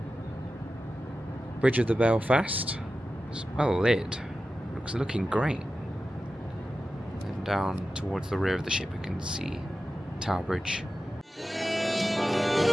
Bridge of the Belfast is well lit, looking great. And down towards the rear of the ship we can see Tower Bridge.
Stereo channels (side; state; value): both; normal; correlation 0.93